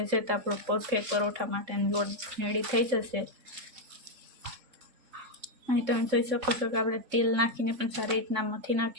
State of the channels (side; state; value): left; late; 3.7 ms